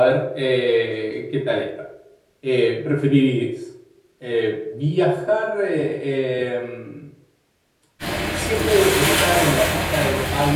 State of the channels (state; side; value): identical; both; correlation 1.00